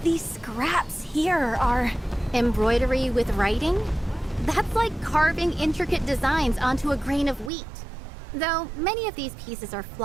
these scraps here are... embroidery with writing? That's like carving intricate designs onto a grain of wheat. Though many of these pieces are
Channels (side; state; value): left; drops out; at 7.5 s